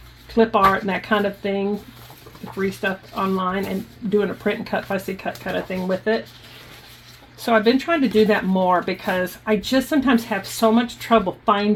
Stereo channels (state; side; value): identical; both; correlation 1.00